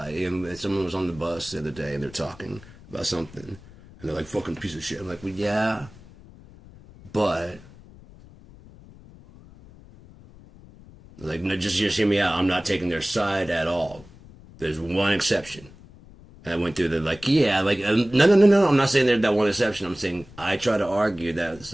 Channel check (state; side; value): noise; left; rumble, 21 dB below the sound